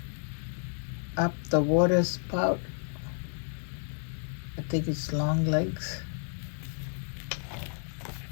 up the water spout. I think it's long legs.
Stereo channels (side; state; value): right; silent; digital silence